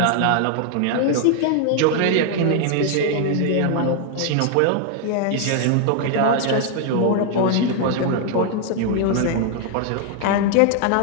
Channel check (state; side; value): different; both; correlation 0.00